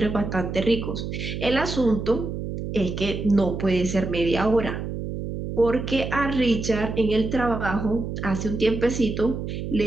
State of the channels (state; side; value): noise; right; hum, 5 dB below the sound